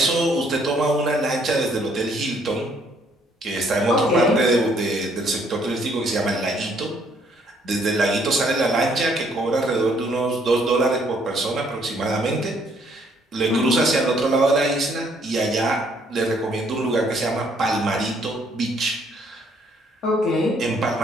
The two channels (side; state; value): both; normal; correlation 0.66